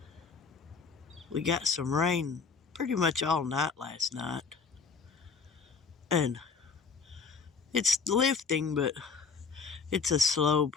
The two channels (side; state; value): right; quieter; 5.2 dB